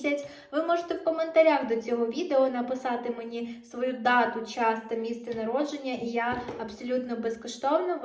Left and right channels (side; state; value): both; identical; correlation 1.00